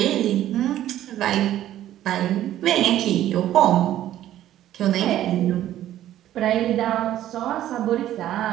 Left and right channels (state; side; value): quieter; left; 12.7 dB